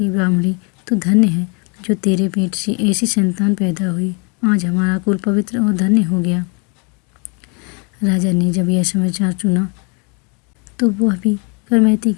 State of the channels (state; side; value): quieter; right; 34.2 dB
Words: ब्राह्मणी तो धन्य है जो तेरे पेट से ऐसी संतान पैदा हुई। आज हमारा कुल पवित्र और धन्य हो गया। राजा ने जब यह समाचार सुना तो वह भी करमैती